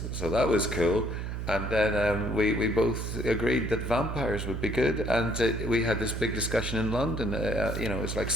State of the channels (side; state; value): right; noise; hum, 4 dB below the sound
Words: so that was cool. And then we both agreed that vampires would be good. And we had this big discussion in London. It was like